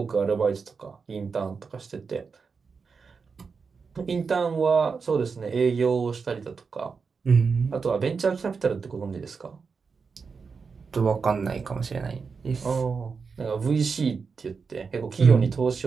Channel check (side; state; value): left; quieter; 5.2 dB